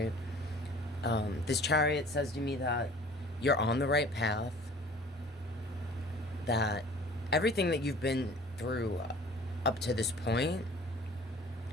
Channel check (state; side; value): normal; both; correlation 0.48